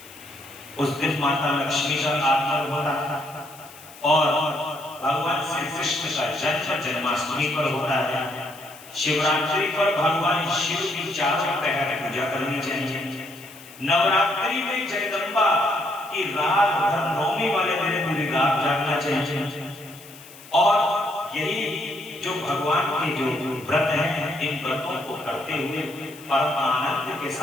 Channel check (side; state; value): left; noise; hiss, 20 dB below the sound